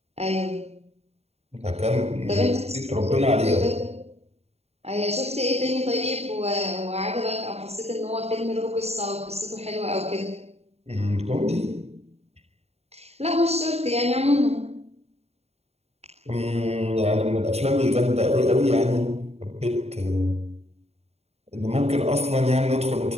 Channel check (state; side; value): late; left; 0.30 ms